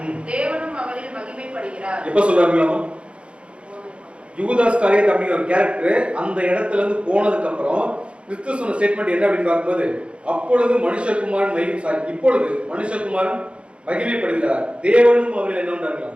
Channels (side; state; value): left; late; 0.059 ms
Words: தேவனும் அவரில் மகிமைப்படுகிறார். எப்ப சொல்றாங்களாமா? யூதாஸ் காரியத் அப்படிங்கிற ஒரு கேரக்டர் அந்த இடத்துல இருந்து போனதுக்கு அப்புறம் கிறிஸ்து சொன்ன ஸ்டேட்மெண்ட் என்ன அப்படின்னு பார்க்கும்போது அப்பொழுது மனுஷகுமாரன் இப்பொழுது மனுஷகுமாரன் மகிமைப்படுகிறார், தேவனும் அவரில் என்ன